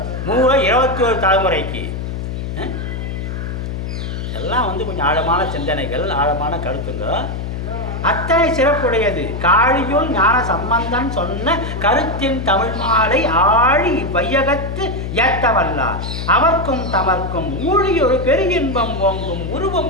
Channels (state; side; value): noise; left; hum, 5 dB below the sound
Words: 21 தலைமுறைக்கு எல்லாம் வந்து கொஞ்சம் ஆழமான சிந்தனைகள், ஆழமான கருத்துங்க. அத்தனை சிறப்புடையது. காழியுள் ஞான சம்பந்தன் சொன்ன கருத்தின் தமிழ் மாலை ஆழி வையகத்து ஏத்தவல்லார் அவர்க்கும் தமர்க்கும் ஊழியொரு பெருகின்பம் ஓங்கும்